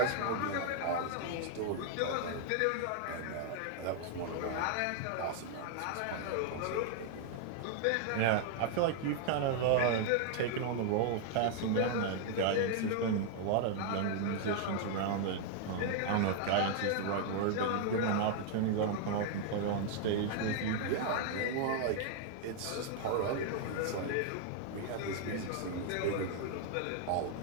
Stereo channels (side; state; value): both; different; correlation 0.00